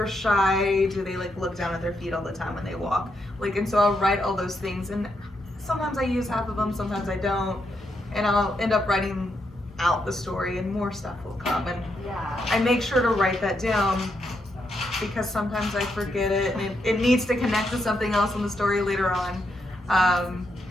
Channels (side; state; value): both; normal; correlation 0.80